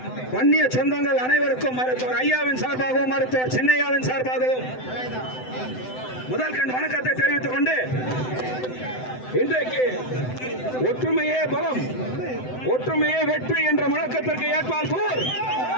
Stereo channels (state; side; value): late; right; 7.9 ms